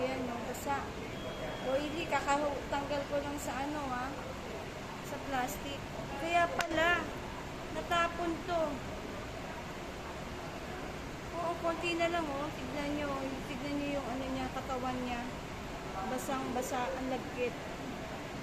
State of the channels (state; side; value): identical; both; correlation 1.00